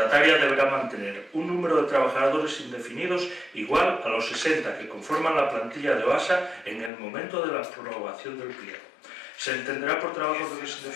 deberá mantener un número de trabajadores indefinidos igual a los 60 que conforman la plantilla de OASA en el momento de la aprobación del pliego. Se entenderá por trabajadores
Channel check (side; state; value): right; drops out; at 6.9 s